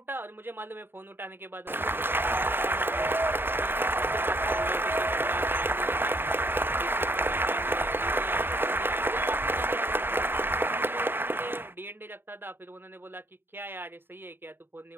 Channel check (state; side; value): late; left; 0.10 ms